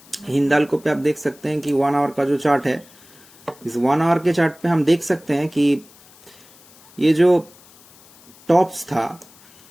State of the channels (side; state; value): left; noise; hiss, 25 dB below the sound